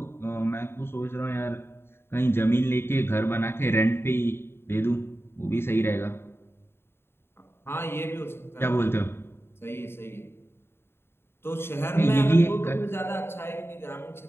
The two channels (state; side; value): late; right; 0.11 ms